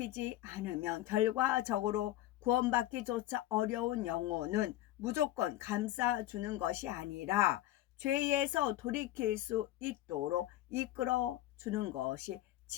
않으면 결과적으로 구원받기조차 어려운 영혼은 무조건 감싸주는 것이 아니라 죄에서 돌이킬 수 있도록 이끌어 주는 것이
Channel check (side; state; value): right; quieter; 14.7 dB